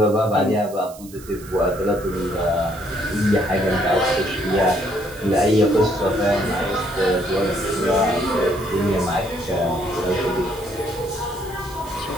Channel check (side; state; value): right; noise; hiss, 19 dB below the sound